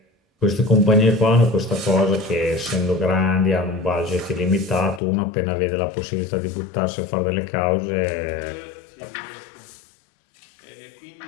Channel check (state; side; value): drops out; right; at 5.0 s